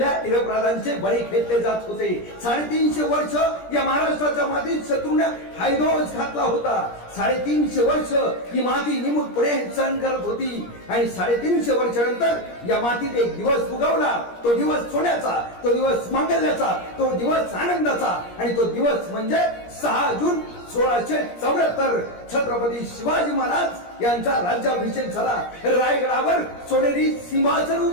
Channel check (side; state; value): right; late; 17 ms